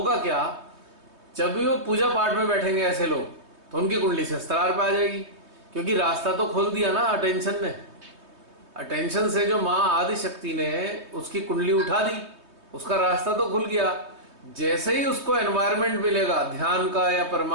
क्या, जब भी वो पूजा पाठ में बैठेंगे ऐसे लोग, तो उनकी कुंडली से स्त्रार पे आ जाएगी, क्योंकि रास्ता तो खोल दिया ना अटेंशन ने। अटेंशन से जो माँ आदि शक्ति ने उसकी कुंडली उठा दी, उसका रास्ता तो खुल गया। जैसे ही उसको एनवायरनमेंट मिलेगा ध्यान का या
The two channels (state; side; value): late; left; 3.2 ms